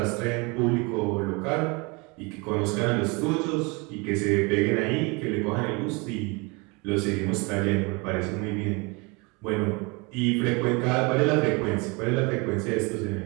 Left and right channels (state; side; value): quieter; left; 28.4 dB